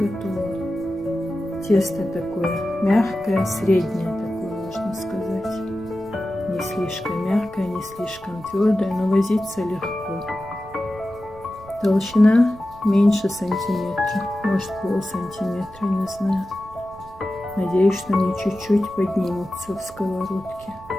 Тесто такое мягкое, среднее такое, можно сказать. Не слишком мягкая, не слишком твердая, но возиться легко. Толщина меньше сантиметра, может полсантиметра, не знаю. Надеюсь, что они чуть-чуть поднимутся в сковородке.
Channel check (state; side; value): noise; right; rumble, 21 dB below the sound